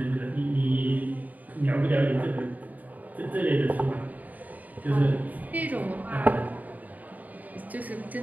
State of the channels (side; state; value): left; late; 0.077 ms